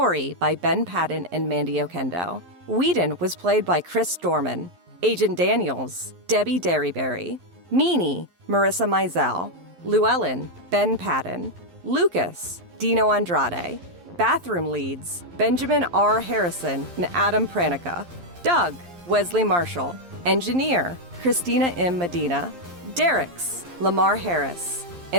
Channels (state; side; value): late; left; 11 ms